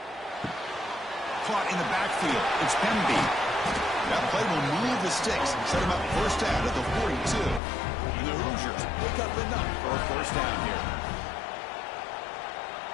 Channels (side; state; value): right; drops out; at 7.6 s